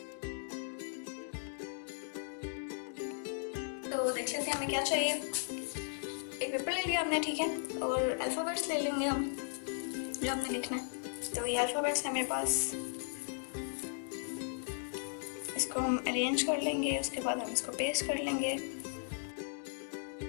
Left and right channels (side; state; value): right; silent; digital silence